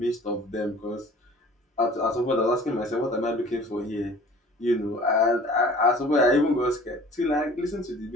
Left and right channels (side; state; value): both; normal; correlation 0.47